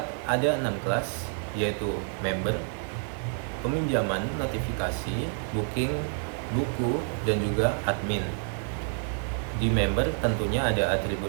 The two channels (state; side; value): silent; left; 58 dB below the other